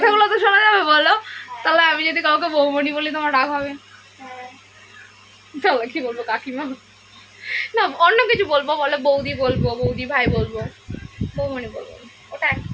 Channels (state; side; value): identical; both; correlation 1.00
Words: তো শোনা যাবে, বলো। তাহলে আমি যদি কাউকে বৌমণি বলি তোমার রাগ হবে? হ্যাঁ, তাহলে কি বলবো, কাকিমা? না, অন্য কিছু বলবো, বলে বৌদি বলবো, বৌদি ভাই বলবো, বৌমণি বলবো না। ওটা এক